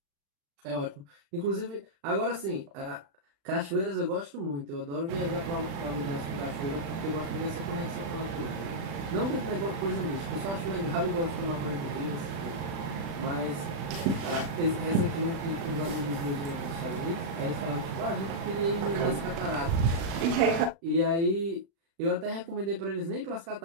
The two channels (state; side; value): late; left; 36 ms